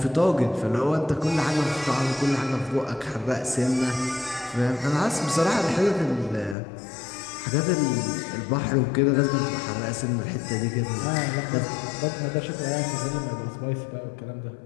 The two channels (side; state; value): right; drops out; at 6.6 s